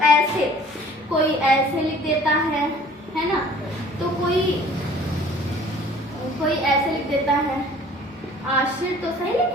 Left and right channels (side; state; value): both; normal; correlation 0.51